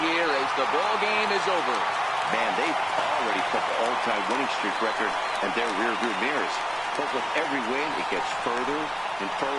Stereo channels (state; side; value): identical; both; correlation 1.00